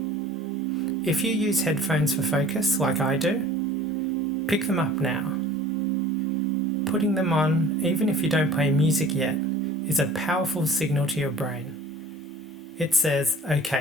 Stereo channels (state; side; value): normal; both; correlation 0.46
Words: If you use headphones for focus, like I do, pick them up now. Putting them on, even if you don't play music yet, is a powerful signal to your brain. It says,